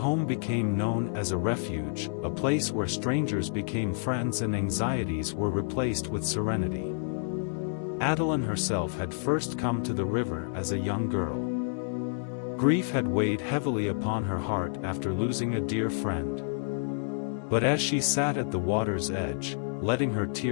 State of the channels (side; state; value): right; silent; 58 dB below the other